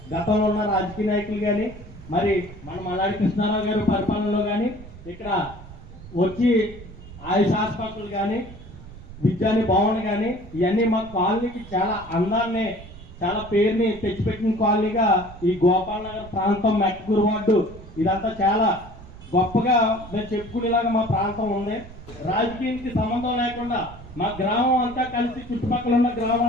గతంలో ఉన్న రాజకీయ నాయకులు కానీ మరి మన మల్లాడి కృష్ణారావు గారు పరిపాలనలో కానీ ఇక్కడ వచ్చి ఆయుష్ హాస్పిటల్ కానీ విద్యాని భవన్ కానీ ఇవన్నీ మా కాలనీకి చాలా అందాన్ని చాలా పేరుని తెచ్చిపెట్టిన కాలనీగా ఈ గోపాల్ నగర్ ప్రాంతం మెట్కూరు వార్డు ఇదంతా చాలా గొప్పగా మేము చెప్పుకునేలాగా మా ప్రాంతం ఉంది. రాజకీయానికి సంబంధం లేకుండా మా గ్రామం అంతా కలిసి చుట్టుపక్కల ఉన్న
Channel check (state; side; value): noise; right; rumble, 16 dB below the sound